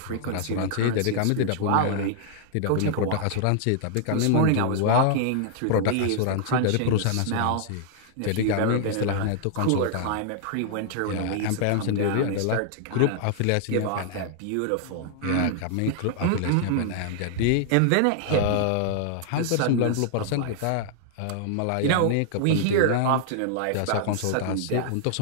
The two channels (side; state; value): both; different; correlation -0.01